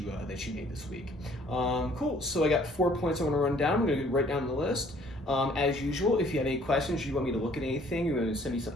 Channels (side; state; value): both; normal; correlation 0.58